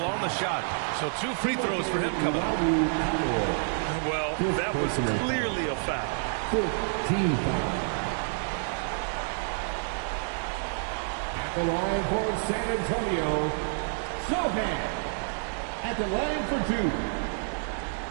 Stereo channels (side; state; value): left; silent; 59 dB below the other